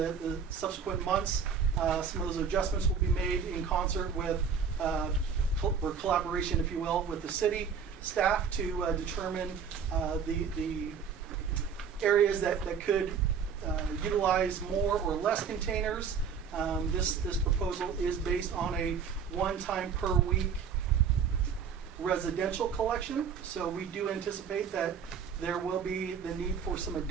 subsequent months, some of those adjustments will be made in concert with or collaboration, if you will, with the city staff to determine the areas that could utilize more or less containers. This proposal is based on a one-time per week residential collection, so we do anticipate that there will be the need for some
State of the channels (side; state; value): left; quieter; 6.6 dB